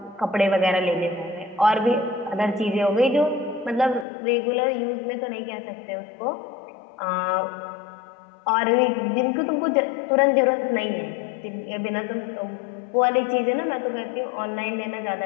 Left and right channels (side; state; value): right; drops out; at 4.0 s